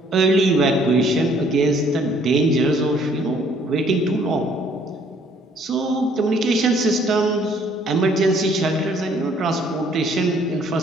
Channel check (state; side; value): normal; both; correlation 0.61